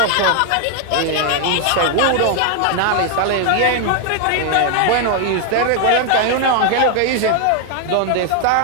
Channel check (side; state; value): both; different; correlation 0.01